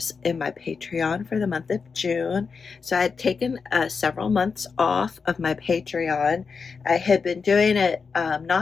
in my Patreon for the month of June. So I had taken several months off of my Patreon. I had been doing it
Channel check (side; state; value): right; quieter; 5.3 dB